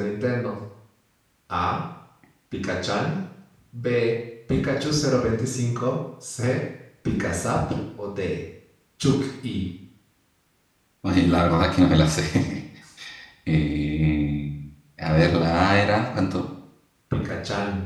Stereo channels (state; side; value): identical; both; correlation 1.00